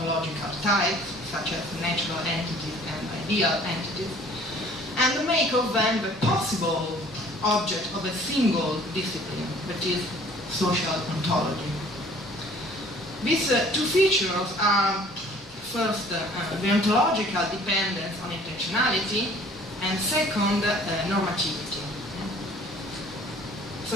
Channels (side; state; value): both; normal; correlation 0.53